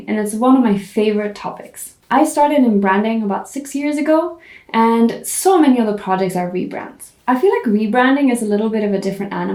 and it's one of my favorite topics. I started in branding about 6 years ago, and so many other projects are rebrands. I feel like rebranding is a little bit of a different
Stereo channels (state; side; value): identical; both; correlation 1.00